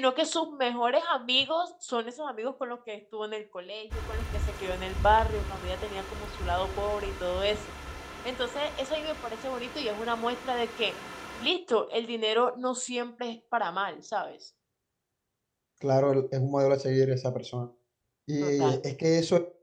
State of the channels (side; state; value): both; identical; correlation 1.00